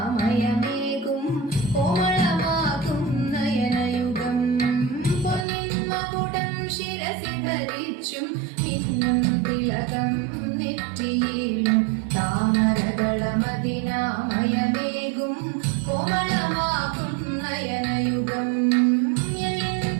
കോമളമാകും നയനയുഗം പൊന്നിൻ മകുടം ശിരസി ധരിച്ചും മിന്നും തിലകം നെറ്റിയിലും താമരകളമതിനാമയമേകും കോമളമാകും നയനയുഗം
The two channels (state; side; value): drops out; left; at 5.5 s